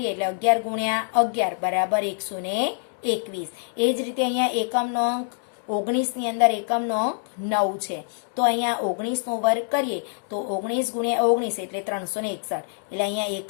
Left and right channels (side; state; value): right; silent; digital silence